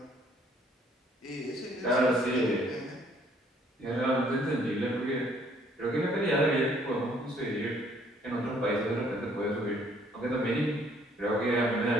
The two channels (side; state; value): both; normal; correlation 0.63